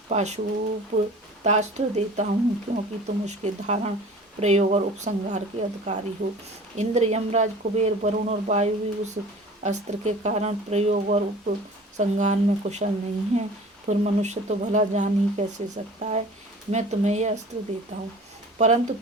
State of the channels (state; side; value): normal; both; correlation 0.43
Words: पाशुपतास्त्र देता हूँ, क्योंकि तुम उसके धारण, प्रयोग और उपसंहार के अधिकारी हो। इंद्र, यमराज, कुबेर, वरुण और वायु भी उस अस्त्र के कारण प्रयोग और उपसंहार में कुशल नहीं है। फिर मनुष्य तो भला जान ही कैसे सकता है। मैं तुम्हें यह अस्त्र देता हूँ, परंतु